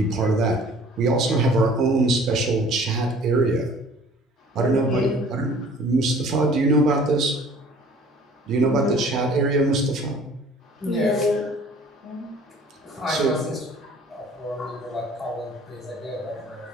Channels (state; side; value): normal; both; correlation 0.51